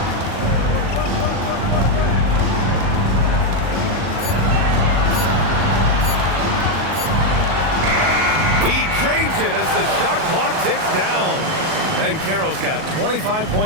He drains it as the shot clock ticks down. Banchero's got 25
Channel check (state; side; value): late; left; 38 ms